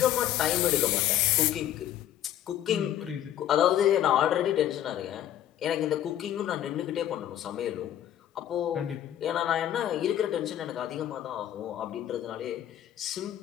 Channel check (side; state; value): right; quieter; 11.5 dB